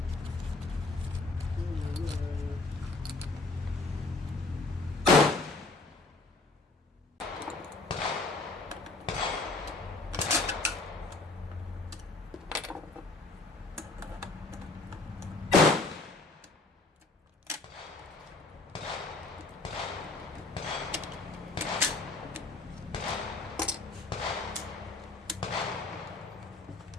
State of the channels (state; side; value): quieter; right; 3.4 dB